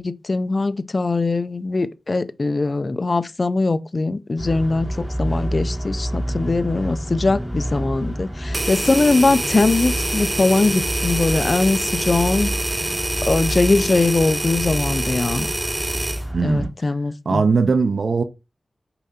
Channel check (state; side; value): normal; both; correlation 0.96